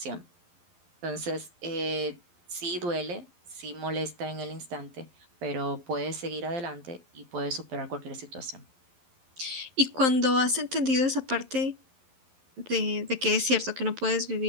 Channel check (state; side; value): late; left; 11 ms